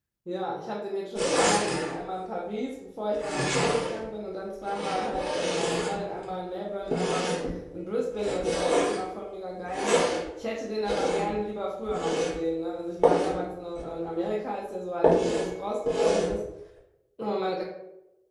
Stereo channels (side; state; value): both; identical; correlation 1.00